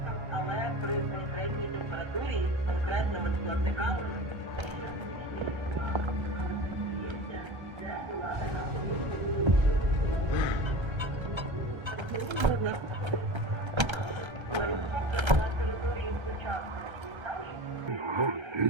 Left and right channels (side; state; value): left; late; 1.3 ms